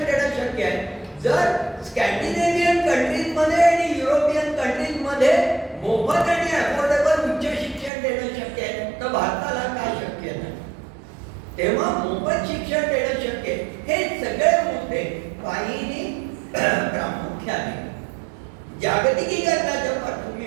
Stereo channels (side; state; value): left; drops out; at 7.9 s